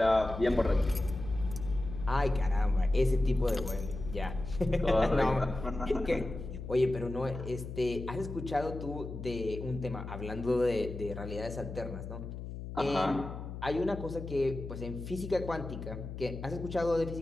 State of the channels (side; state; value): left; noise; hum, 8 dB below the sound